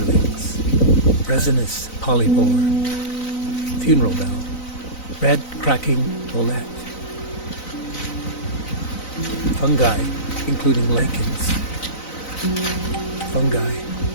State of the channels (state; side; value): late; right; 4.0 ms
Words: resinous polypore, funeral bell, red cracking bolette, fungi, including lichens. Fungi,